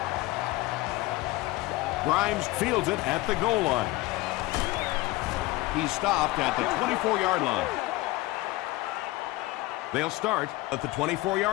Grimes fields it at the goal line. He's stopped at the 24-yard line. They'll start at the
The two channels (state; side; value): quieter; right; 19.3 dB